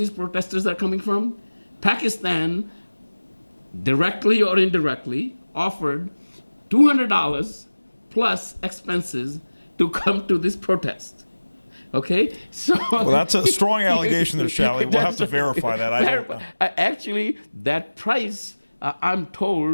protesters are coming from? Pakistan, directly or indirectly, offered $200 plus expenses to come to this protest. Okay, so well, that's a strong allegation there, Shally. We'll have to verify that. Actually, that price, I'm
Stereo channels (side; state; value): both; inverted; correlation -1.00